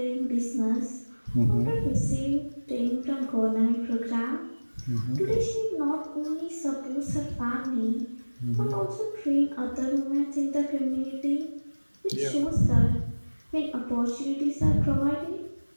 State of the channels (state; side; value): inverted; both; correlation -1.00